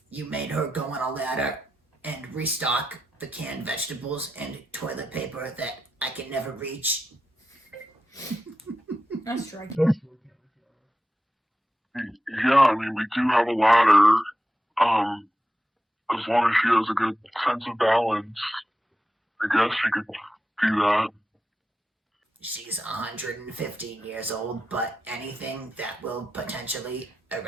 you made her go on a ladder and restock the canned vegetables and toilet paper that I can never reach. That's striking. Yeah, I mean, we do have a ladder. As long as she has a good sense of balance, I guess she could do that. She's 115 years old, but anything that will potentially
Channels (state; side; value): normal; both; correlation 0.90